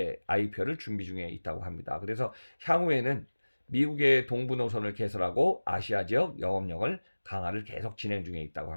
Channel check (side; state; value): both; inverted; correlation -1.00